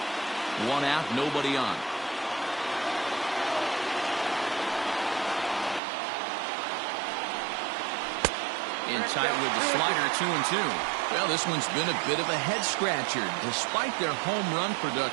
1 out, nobody on. In tight with the slider, 2-2. Well, this one's been a bit of a head scratcher despite their home run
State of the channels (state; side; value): drops out; left; at 5.8 s